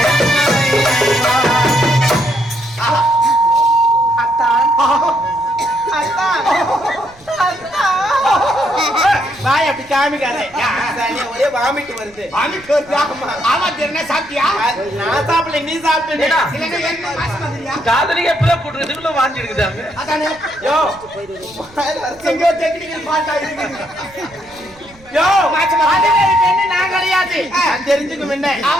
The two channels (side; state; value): right; noise; rumble, 26 dB below the sound